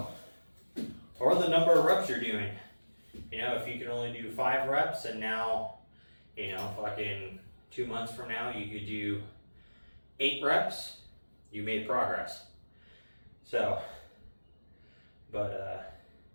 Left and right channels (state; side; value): inverted; both; correlation -1.00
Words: or the number of reps you're doing. You know, if you can only do 5 reps and now, you know, fucking 2 months from now you could do 8 reps, you made progress. So, but